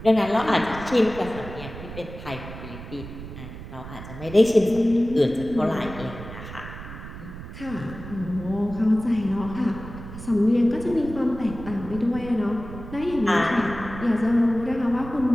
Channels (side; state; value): right; noise; rumble, 12 dB below the sound